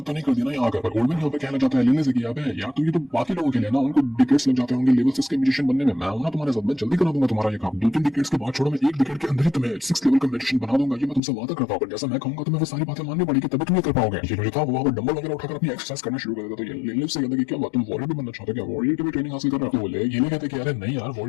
तो नहीं कर दिया ना यहाँ आकर। ओल्डमैन यहाँ पे कहना चाहता है लिली से कि यार तो ये तो बाकी लोगों के लिए ना, उनको डिकेड्स लग जाते होंगे लेवल 6 के म्यूजिशियन बनने में। मैं हूं ना तुम्हारे साथ, मैं जल्दी करा दूंगा तुम्हारा ये काम। 2-3 डिकेड्स के बाद छोड़ो, मैं 1 डिकेड के अंदर ही तुम्हें 6 लेवल का म्यूजिशियन बना दूंगा। ये मैं तुमसे वादा करता हूँ। जैसा मैं कहूंगा तुम्हें वो सारी बातें माननी पड़ेगी तभी तुम ये कर पाओगे। ये जो था वो वहां पर डंबल वगैरह उठाकर अपनी एक्सरसाइज करना शुरू कर देता। तो ये लिली से कहता कि क्या बात तुम वॉरियर भी बनना चाहते हो क्या, वॉरियर की भी ट्रेनिंग हासिल कर रहा है। तो ये नहीं कहते कि अरे नहीं यार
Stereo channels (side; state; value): right; drops out; at 11.2 s